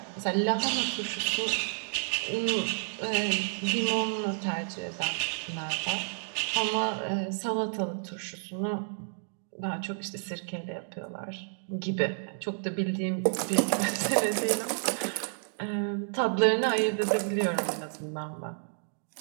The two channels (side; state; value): left; silent; digital silence